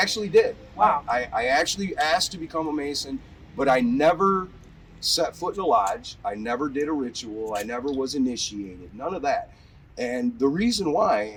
did. Wow. I actually asked to become a Mason, but I never set foot in a lodge. I never did a ritual. I never was initiated. None of that. And the reason why,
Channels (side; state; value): both; identical; correlation 1.00